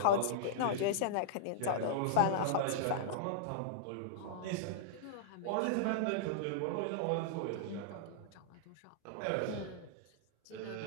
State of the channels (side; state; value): both; different; correlation -0.02